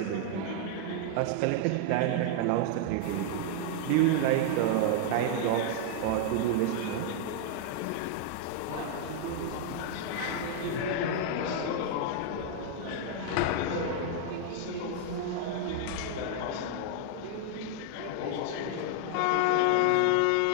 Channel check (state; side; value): different; both; correlation 0.00